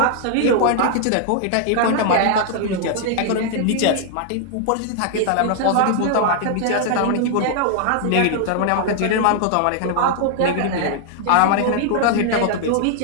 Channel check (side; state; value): both; different; correlation 0.00